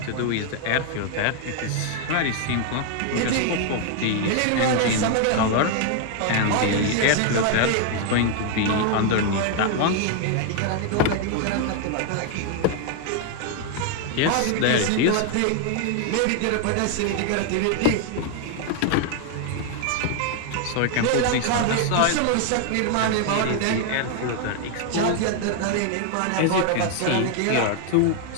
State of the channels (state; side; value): different; both; correlation 0.00